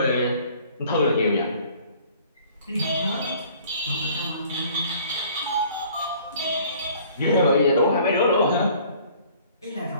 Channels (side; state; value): both; inverted; correlation -0.54